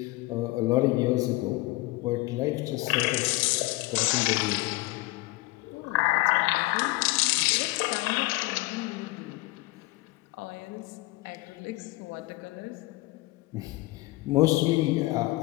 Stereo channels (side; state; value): right; quieter; 20.9 dB